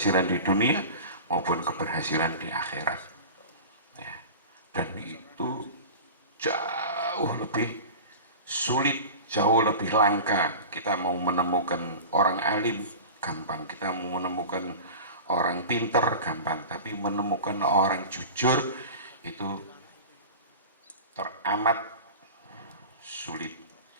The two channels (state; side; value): inverted; both; correlation -0.33